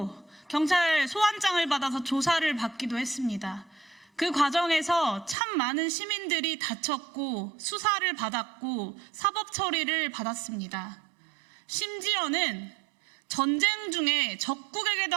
경찰 소환장을 받아서 조사를 받기도 했습니다. 그 과정에서 참 많은 시민들이 다쳤고 수사를 받았고 사법 처리를 받았습니다. 심지어는 전쟁 중에 적국에게도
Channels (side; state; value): left; drops out; at 5.4 s